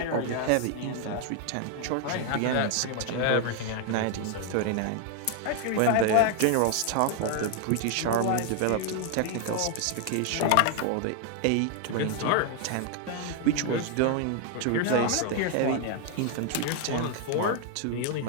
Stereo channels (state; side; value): different; both; correlation 0.00